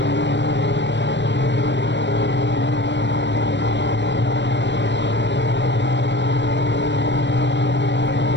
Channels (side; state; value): right; late; 0.52 ms